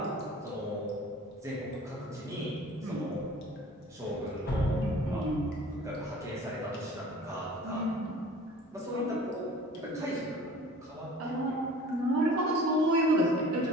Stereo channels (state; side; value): normal; both; correlation 0.45